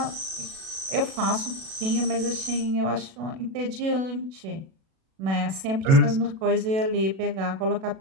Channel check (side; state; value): left; late; 37 ms